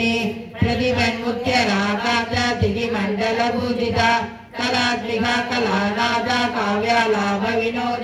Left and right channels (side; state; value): both; identical; correlation 1.00